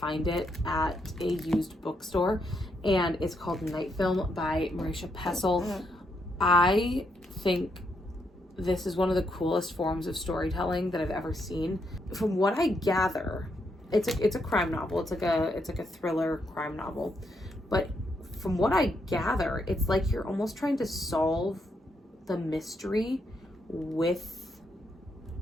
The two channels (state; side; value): normal; both; correlation 0.78